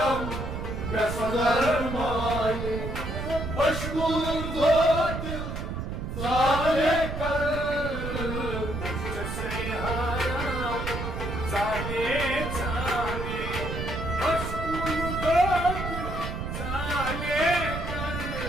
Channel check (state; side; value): noise; right; rumble, 5 dB below the sound